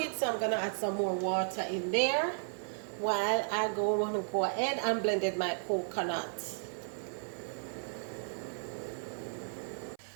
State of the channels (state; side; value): silent; left; 55 dB below the other